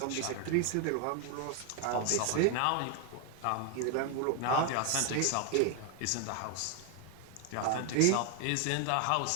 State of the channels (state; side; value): different; both; correlation 0.00